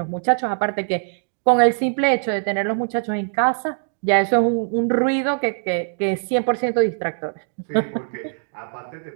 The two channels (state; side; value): silent; left; digital silence